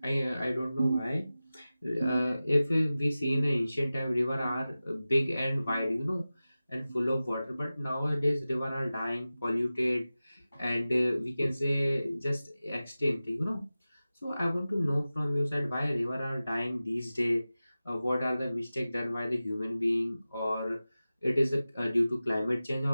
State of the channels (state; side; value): inverted; both; correlation -0.96